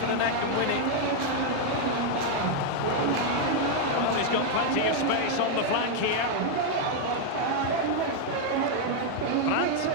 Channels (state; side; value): different; both; correlation 0.00